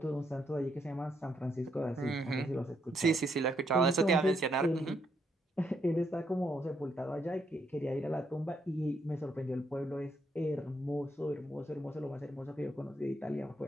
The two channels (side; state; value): both; normal; correlation 0.76